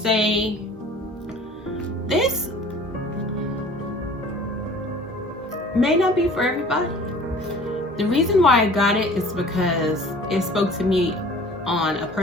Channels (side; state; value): both; normal; correlation 0.47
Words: this may not be for everybody. The reason why I got it is because it spoke to me on a